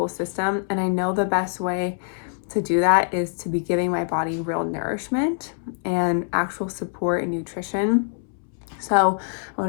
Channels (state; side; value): silent; right; 62 dB below the other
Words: system. And I know the best way to do that is to be giving my body real nourishment and actual support and nutrition. So I